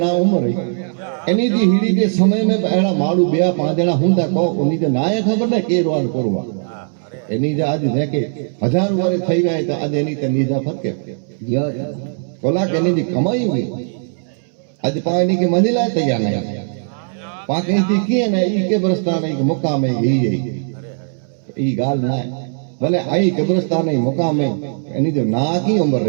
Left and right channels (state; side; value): silent; left; 67 dB below the other